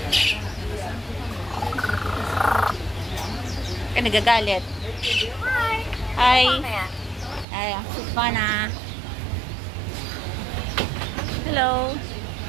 Ka nagagalit. Hi. Ay, yausik pa na. Hello.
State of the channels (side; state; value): left; drops out; at 7.5 s